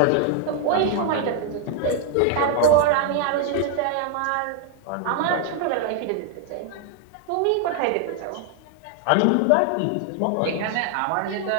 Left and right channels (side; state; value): both; different; correlation 0.00